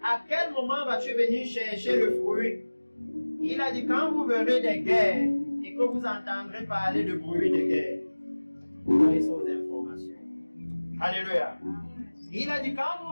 à quel moment vas-tu venir chercher le fruit? Il a dit, quand vous verrez des guerres et que vous entendrez parler de bruit de guerre, vous aurez ces informations. Alléluia. Il a dit, quand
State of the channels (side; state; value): both; inverted; correlation -1.00